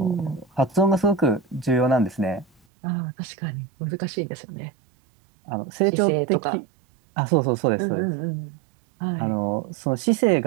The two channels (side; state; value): left; drops out; at 2.6 s